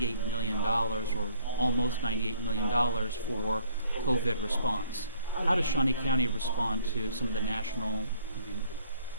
million, or almost $98 million for COVID response. How does Shawnee County respond to some of the national,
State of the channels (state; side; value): inverted; both; correlation -0.60